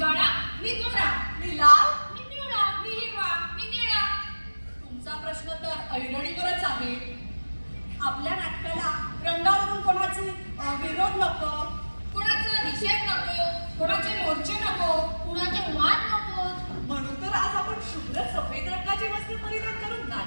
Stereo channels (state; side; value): inverted; both; correlation -1.00